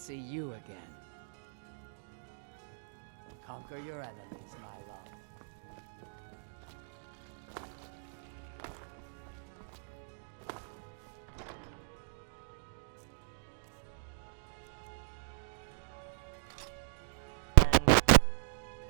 you again. Conquer your enemies, my love.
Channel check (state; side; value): silent; left; digital silence